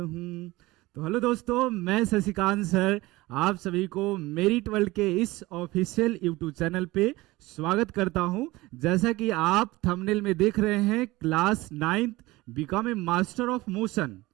तो हेलो दोस्तों, मैं शशिकांत सर आप सभी को मेरिट वर्ल्ड के इस ऑफिशियल यूट्यूब चैनल पे स्वागत करता हूं। जैसा कि आप थंबनेल में देख रहे हैं, class 9th become a master of motion.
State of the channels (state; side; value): quieter; left; 20.0 dB